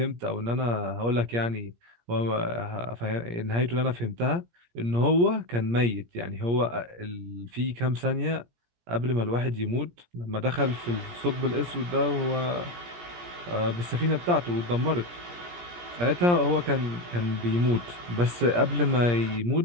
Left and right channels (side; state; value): left; late; 17 ms